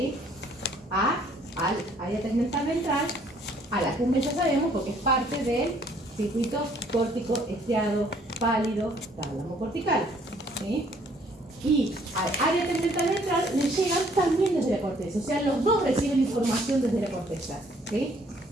al área tegmental ventral? A la accumbens ya sabemos, porque es parte del circuito córtico estriado pálido tálamo cortical, ¿sí? Y al área tegmental ventral le llegan también desde la corteza, o sea, los dos reciben información desde la corteza, ¿sí?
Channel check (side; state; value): both; normal; correlation 0.62